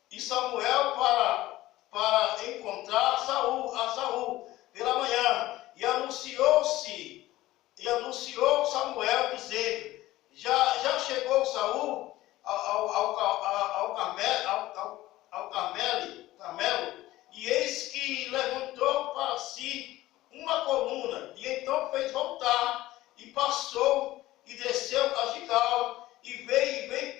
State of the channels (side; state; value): right; quieter; 16.6 dB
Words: para encontrar a Saul pela manhã, e anunciou Samuel dizendo: já chegou Saul ao Carmelo, e eis que levantou para si uma coluna, e então fez voltar, e passou e desceu a Gigal, e veio